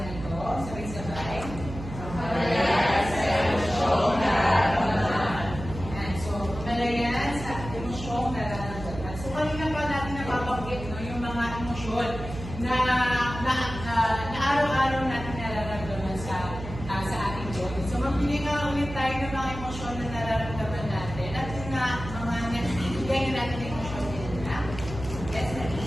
ito. Sabay-sabay. So, kamalayan sa emosyong nararamdaman. So, kanina pa natin napabanggit yung mga emosyon na araw-araw natin nararamdaman sa ating body. So, magbigay nga ulit tayo ng mga emosyon na nararamdaman natin. At yung mga nagbibigay natin ng emosyon din na. Yes, Nani.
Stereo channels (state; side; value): noise; right; hum, 10 dB below the sound